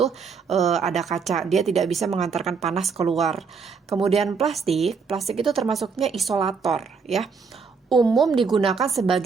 ada kaca, dia tidak bisa mengantarkan panas keluar. Kemudian plastik itu termasuknya isolator, ya. Umum digunakan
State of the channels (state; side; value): quieter; left; 5.4 dB